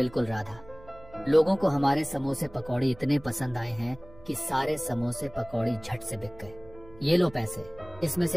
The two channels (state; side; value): noise; right; hum, 21 dB below the sound